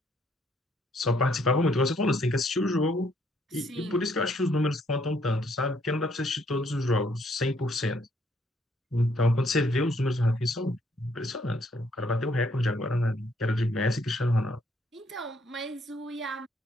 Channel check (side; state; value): both; normal; correlation 0.69